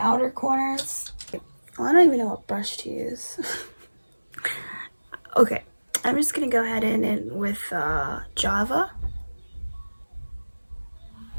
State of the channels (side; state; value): both; inverted; correlation -1.00